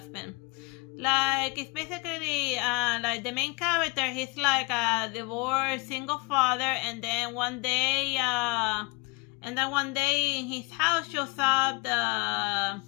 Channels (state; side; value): quieter; right; 27.2 dB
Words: Like, it's basically, like, the main character, he's like a divorced single father, and then one day in his house shows up